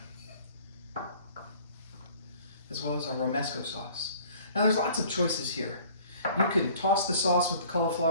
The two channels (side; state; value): both; inverted; correlation -0.51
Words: as well as our Romesco sauce. Now there's lots of choices here. You can toss the sauce with the